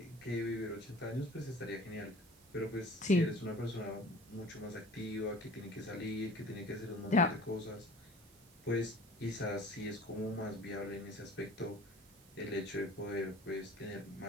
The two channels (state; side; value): noise; right; hiss, 26 dB below the sound